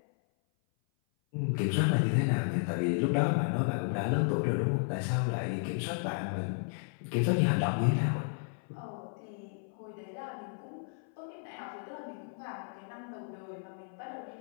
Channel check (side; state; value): right; silent; 56 dB below the other